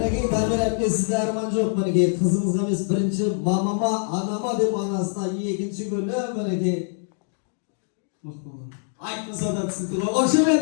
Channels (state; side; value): silent; right; digital silence